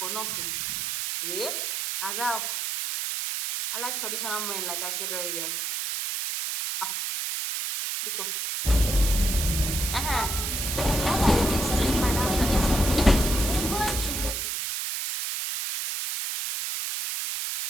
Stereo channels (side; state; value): right; noise; hiss, 2 dB below the sound